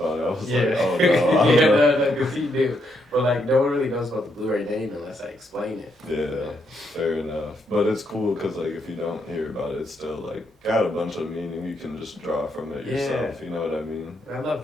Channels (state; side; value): normal; both; correlation 0.77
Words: it. I was like, oh no, I don't know. no, because he do. But like, no one really knows about the Blu Ray name unless I explain it. Yeah, fair enough. But it's cool because like if you don't hear about it, it's still like got a bunch of meaning. You can just draw from it yourself. You know what I mean? I